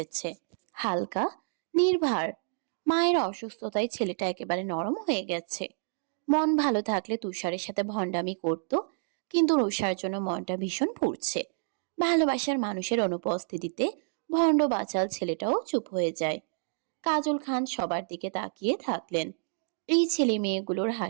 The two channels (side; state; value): left; silent; digital silence